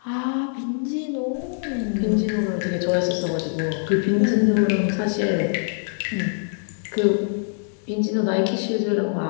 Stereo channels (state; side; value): silent; right; 63 dB below the other